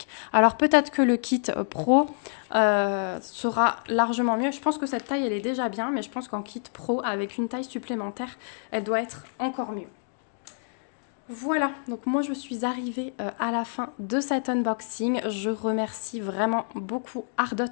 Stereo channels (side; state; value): right; silent; digital silence